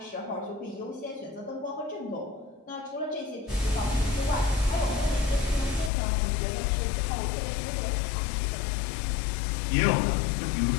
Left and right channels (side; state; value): right; drops out; at 5.9 s